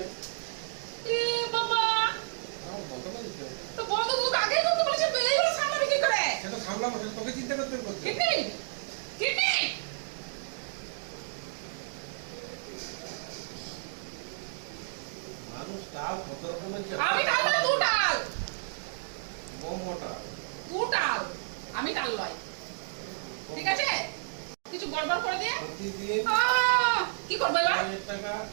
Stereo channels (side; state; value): left; silent; digital silence